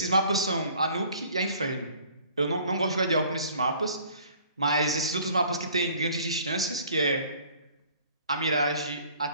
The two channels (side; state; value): both; inverted; correlation -0.54